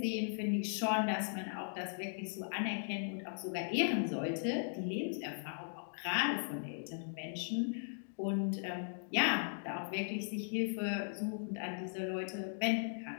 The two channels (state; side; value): silent; right; digital silence